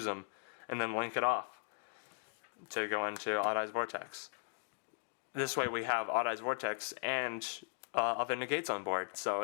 them? And then link it off to go into Odd Eyes Vortex. This way we have Odd Eyes Vortex and other negates on board, so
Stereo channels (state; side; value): silent; right; digital silence